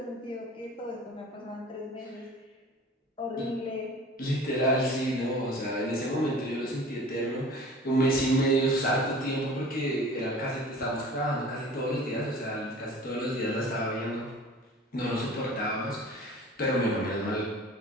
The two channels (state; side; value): normal; both; correlation 0.43